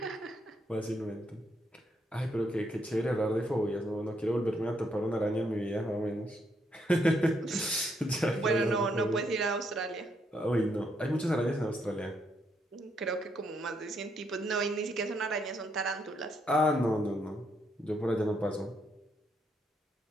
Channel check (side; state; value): both; normal; correlation 0.75